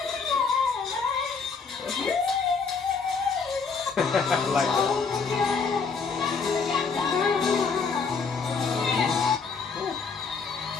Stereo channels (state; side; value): quieter; right; 5.1 dB